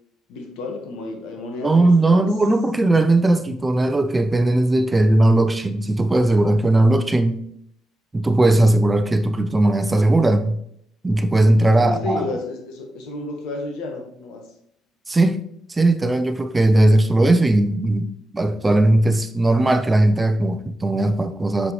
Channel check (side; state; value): both; normal; correlation 0.93